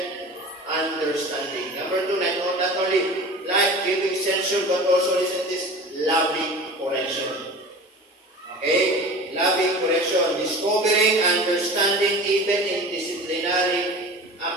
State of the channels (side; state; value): both; normal; correlation 0.37